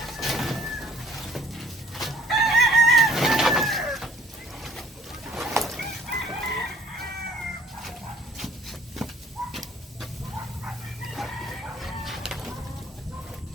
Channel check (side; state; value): both; normal; correlation 0.57